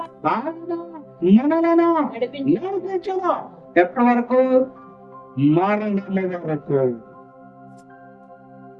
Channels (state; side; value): identical; both; correlation 1.00